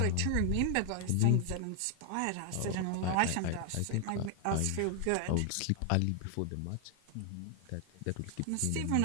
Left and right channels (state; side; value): different; both; correlation 0.00